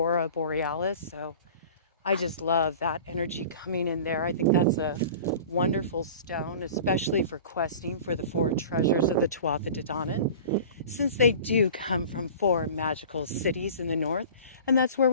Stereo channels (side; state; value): both; inverted; correlation -0.40